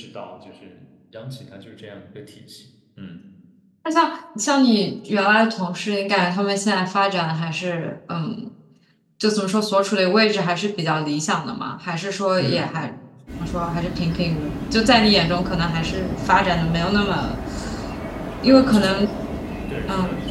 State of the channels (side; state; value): both; identical; correlation 1.00